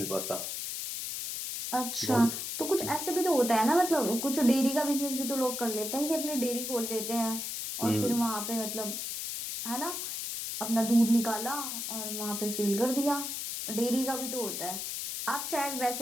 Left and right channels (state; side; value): noise; left; hiss, 4 dB below the sound